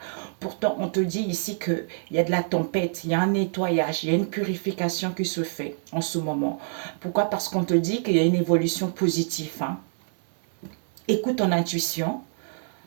Pourtant, on te dit ici qu'il y a de la tempête, il y a un nettoyage, il y a une purification qui se fait en ce moment. Pourquoi? Parce qu'on te dit qu'il y a une évolution positive. Hein. Écoute ton intuition,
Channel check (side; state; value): left; silent; 61 dB below the other